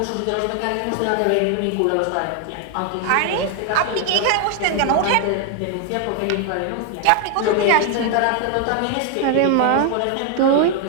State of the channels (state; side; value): different; both; correlation 0.00